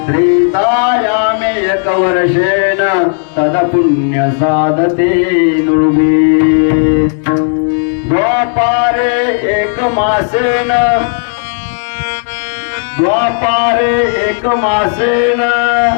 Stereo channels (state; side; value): silent; right; digital silence